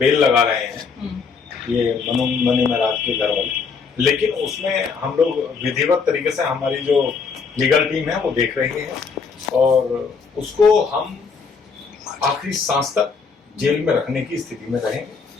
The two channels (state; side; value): quieter; right; 5.3 dB